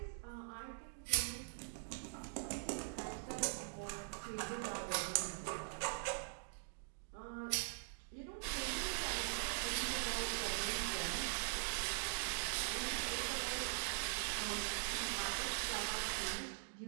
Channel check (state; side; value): silent; left; digital silence